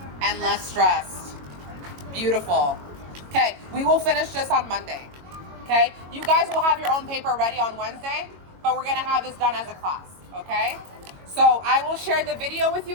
and less stressed. Beautiful. Okay, we will finish this on Monday. Okay, you guys will have your own paper ready on Wednesday, but we're gonna have this done as a class. Okay, so I will share the video with you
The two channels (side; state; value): left; late; 22 ms